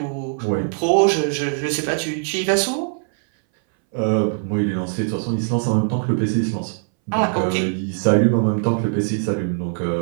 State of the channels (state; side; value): silent; left; 62 dB below the other